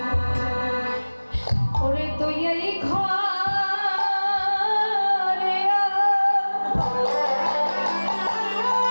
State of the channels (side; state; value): both; inverted; correlation -1.00